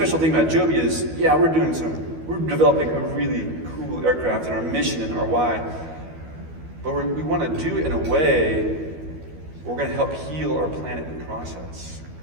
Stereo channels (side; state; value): left; late; 12 ms